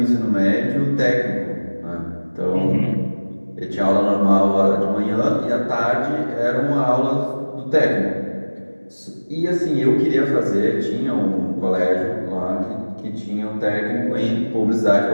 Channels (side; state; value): both; inverted; correlation -1.00